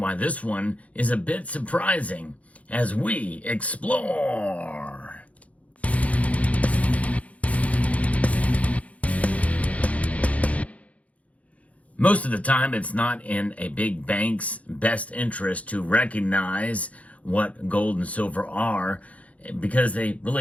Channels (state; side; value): late; right; 0.067 ms